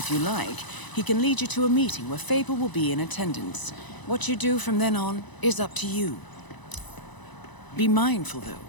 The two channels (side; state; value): right; late; 1.0 ms